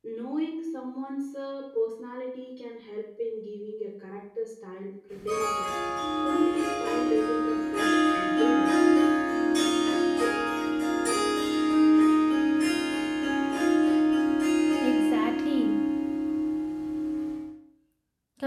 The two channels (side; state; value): both; identical; correlation 1.00